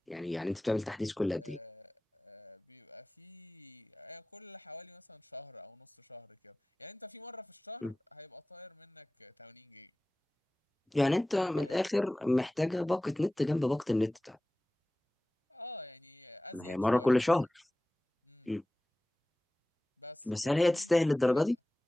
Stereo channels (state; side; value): normal; both; correlation 0.97